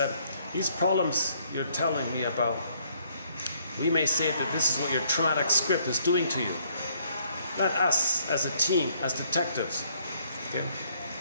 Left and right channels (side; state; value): both; inverted; correlation -0.67